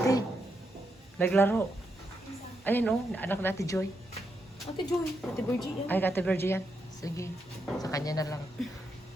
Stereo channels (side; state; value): both; normal; correlation 0.82